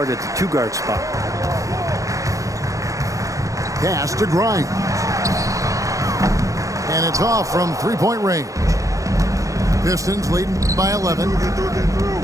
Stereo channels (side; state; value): left; late; 0.16 ms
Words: at the 2-guard spot. Pass to Grimes. And it's off from 3-point range. Pistons leading by 11.